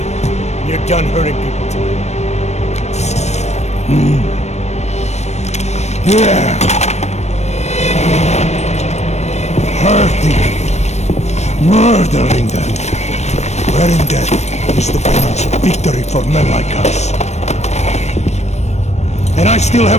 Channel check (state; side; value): late; right; 0.32 ms